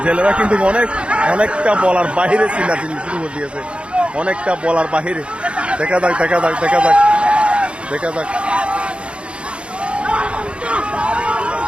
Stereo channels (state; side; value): late; left; 0.058 ms